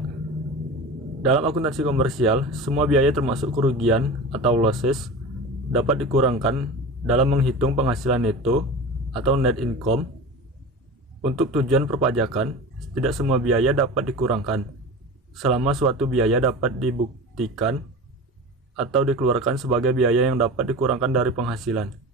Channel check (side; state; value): both; normal; correlation 0.32